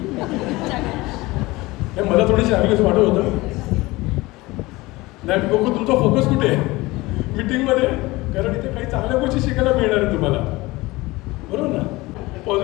मला थोडीशी आम्ही वाटत होतं. नाही बघू तुमचा फोकस कुठे आहे मीटिंगमध्ये, कारण इथे काही चांगल्या गोष्टी शिकायला मिळणार आहे तुम्हाला. बरोबर ना.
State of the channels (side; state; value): right; quieter; 20.9 dB